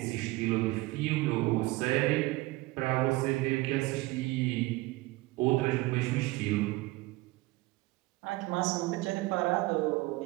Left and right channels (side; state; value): left; quieter; 20.5 dB